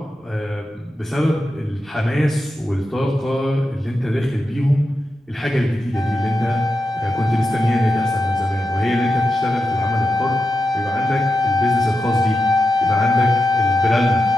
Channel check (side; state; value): both; normal; correlation 0.89